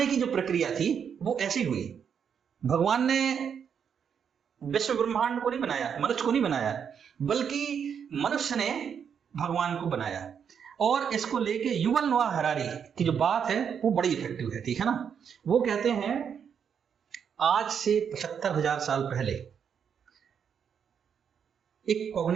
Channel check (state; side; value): quieter; left; 7.5 dB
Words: की जो प्रक्रिया थी वो ऐसी हुई। भगवान ने विश्व ब्रह्मांड को नहीं बनाया, मनुष्य को नहीं बनाया, बल्कि मनुष्य ने भगवान को बनाया। और इसको लेके युवल नोआ हरारी की जो बात है वो बड़ी इफेक्टिव है, ठीक है ना। वो कहते हैं आज से 75,000 साल पहले एक